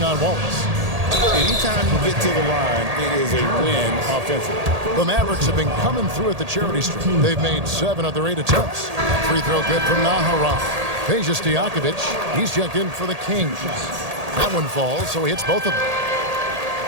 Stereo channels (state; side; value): late; left; 1.8 ms